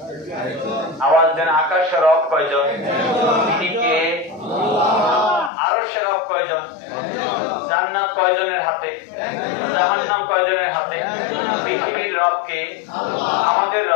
আওয়াজ দেন, আকাশের রব কয়জন? তিনি কে? আরশের রব কয়জন? জান্নাত কয়জনের হাতে? জাহান্নাম কয়জনের হাতে? পৃথিবীর রব কে? আমাদের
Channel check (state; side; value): drops out; right; at 5.5 s